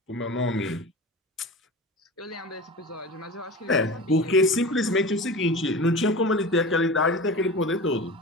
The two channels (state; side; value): normal; both; correlation 0.32